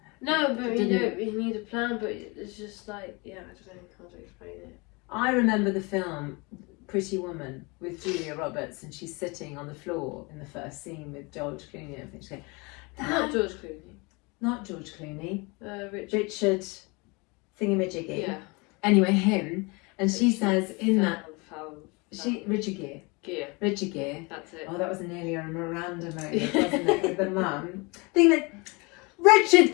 No, but you need a plan, but it's just like, yeah, I don't know how to explain it. I remember the film Pretty Woman with Julia Roberts, and she's sitting on the floor in the first scene with George Clooney and everything. She's going, Not George Clooney. Not George Clooney. Richard Thingamajiggy. Yeah. Anyway, him. And she says in that... Richard Gere. Richard Gere. That's it. Oh, that was nearly a Miranda moment, wasn't it, with the mum? Thing that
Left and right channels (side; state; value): right; quieter; 27.9 dB